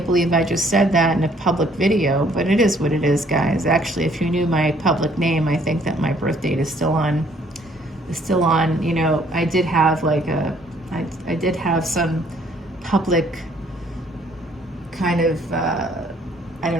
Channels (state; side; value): normal; both; correlation 0.62